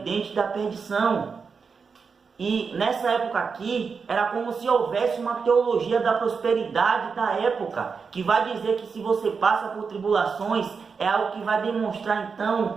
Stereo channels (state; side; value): quieter; left; 5.4 dB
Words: da perdição. E nessa época aqui, era como se houvesse uma teologia da prosperidade da época, que vai dizer que se você passa por tribulações, é algo que vai demonstrar